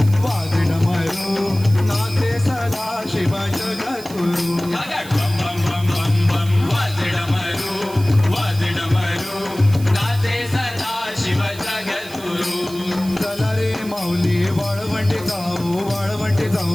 नाचे सदा शिव जगतुरू अगड बम बम बम बम बम वाजे डमरू नाचे सदा शिव जगद्गुरु चला रे माऊली वाळवंटी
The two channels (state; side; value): noise; right; hiss, 17 dB below the sound